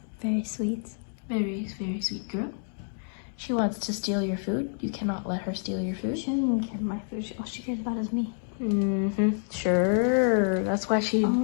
Very sweet. Very, very sweet girl. She wants to steal your food. You cannot let her steal your food. She doesn't care about my food. All she cares about is me. Sure. That's why she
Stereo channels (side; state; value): right; silent; digital silence